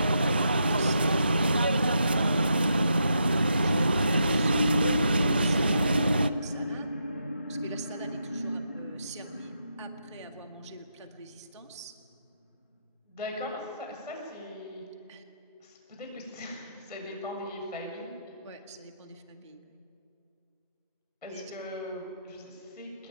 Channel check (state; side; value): inverted; both; correlation -0.81